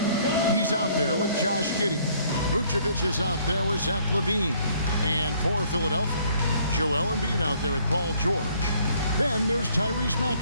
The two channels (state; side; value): inverted; both; correlation -0.62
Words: He's out there with Josh Giddey. Vucevic is out there with Zach LaVine. And for Philadelphia, Joel Embiid out there with Paul George. Then there's Tyrese